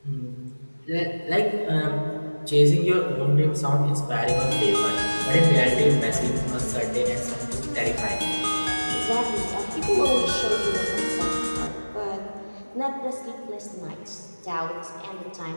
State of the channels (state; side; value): inverted; both; correlation -1.00